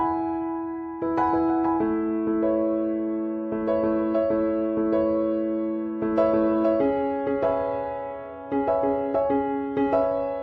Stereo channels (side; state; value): both; identical; correlation 1.00